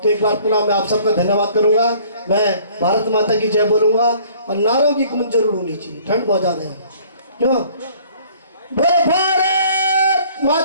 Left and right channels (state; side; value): inverted; both; correlation -0.55